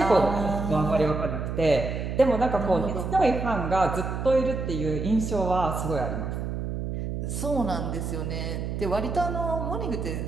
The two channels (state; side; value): noise; right; hum, 4 dB below the sound